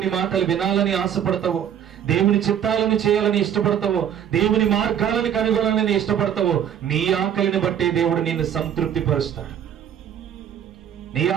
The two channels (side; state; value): left; quieter; 9.3 dB